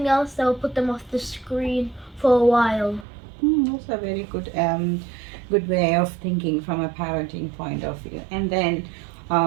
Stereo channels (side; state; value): left; drops out; at 3.1 s